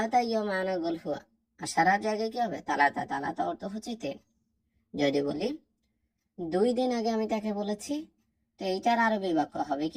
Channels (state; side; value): identical; both; correlation 1.00